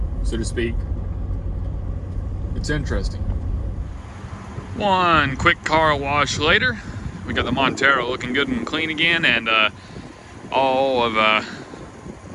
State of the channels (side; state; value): both; identical; correlation 1.00